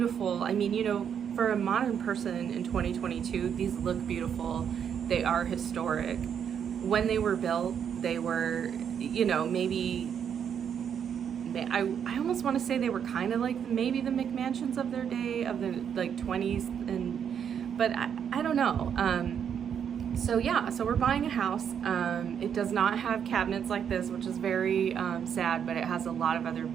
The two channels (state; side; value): quieter; left; 8.1 dB